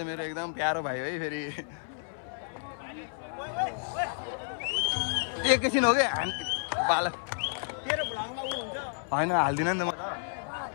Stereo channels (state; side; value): silent; right; 57 dB below the other